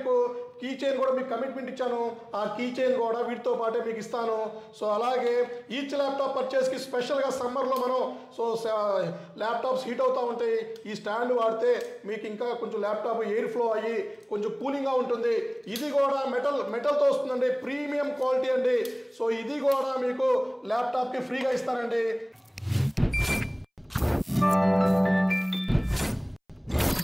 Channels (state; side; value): identical; both; correlation 1.00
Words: కీ చైన్ కూడా మీకు కమిట్మెంట్ ఇచ్చాను. ఆ కీ చైన్ కూడా వీటితో పాటే మీకు ఇస్తాను. సో అలాగే ఈచ్ ల్యాప్టాప్ పర్చేస్కి స్పెషల్గా సమ్మర్లో మనం ల్యాప్టాప్స్ హీట్ అవుతూ ఉంటాయి. ఈ స్టాండ్ వాడితే మీకు ఇంకా కొంచెం ల్యాప్టాప్ ఎయిర్ ఫ్లో అయ్యి కొంచెం కూలింగ్గా ఉంటుంది. ఇది కూడా మెటల్తో వస్తుందండి, ప్రీమియం క్వాలిటీ అండి. సో ఇది కూడా మీకు ల్యాప్టాప్కి ఫ్రీగా ఇస్తానండి.